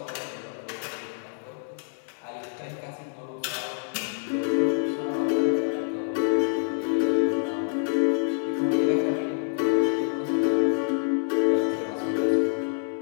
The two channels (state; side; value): silent; right; digital silence